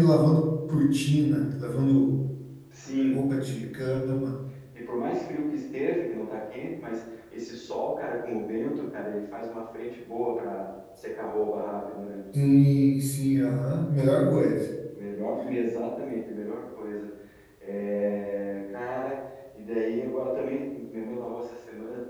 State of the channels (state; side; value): identical; both; correlation 1.00